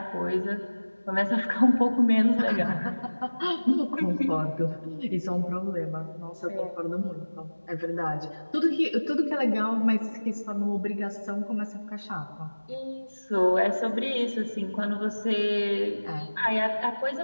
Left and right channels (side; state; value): both; inverted; correlation -1.00